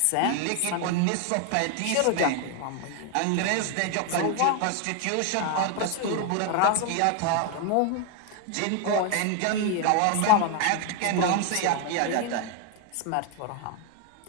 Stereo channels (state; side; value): different; both; correlation 0.01